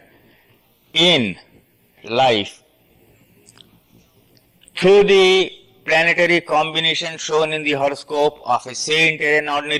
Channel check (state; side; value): identical; both; correlation 1.00